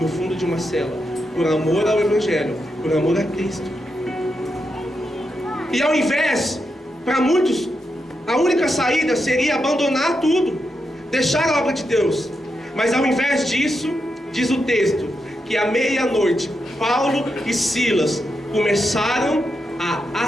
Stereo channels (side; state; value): both; normal; correlation 0.85